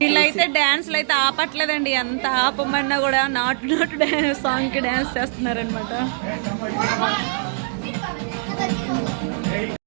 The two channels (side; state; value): left; silent; digital silence